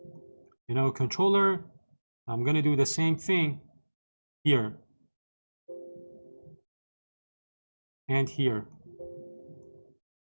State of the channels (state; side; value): inverted; both; correlation -1.00